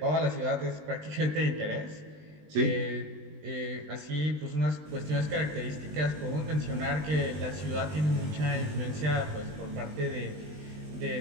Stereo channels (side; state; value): left; late; 20 ms